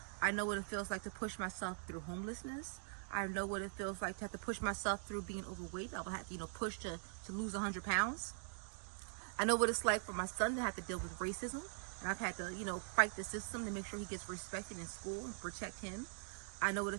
I know what it feels like to push myself through homelessness. I know what it feels like to have to push myself through being overweight. I will have to, push to lose 100 pounds. I know what it's like for my son to have to deal with racism, and I've had to, fight the system to make sure he gets respected in school and protect him. I know what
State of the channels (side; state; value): left; silent; digital silence